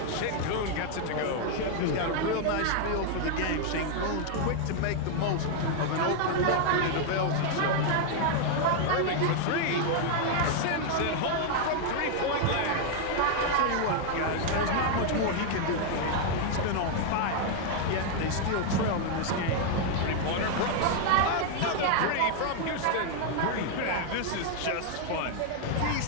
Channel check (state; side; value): different; both; correlation 0.00